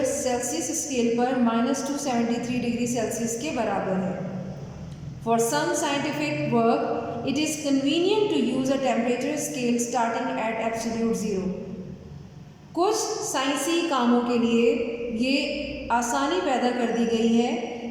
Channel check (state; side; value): identical; both; correlation 1.00